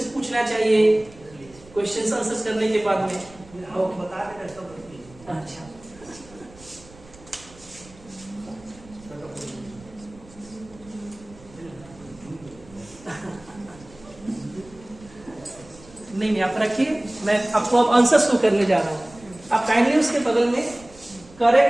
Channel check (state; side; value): noise; right; rumble, 22 dB below the sound